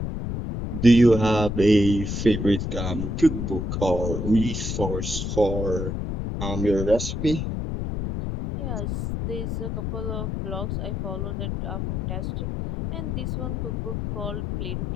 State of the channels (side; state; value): left; noise; rumble, 3 dB below the sound